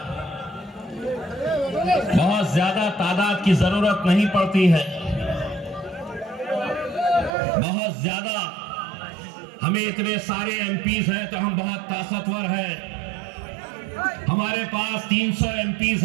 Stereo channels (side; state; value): left; drops out; at 7.3 s